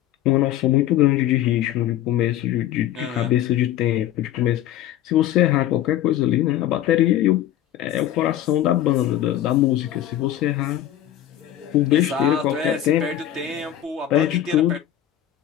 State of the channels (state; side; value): quieter; right; 12.1 dB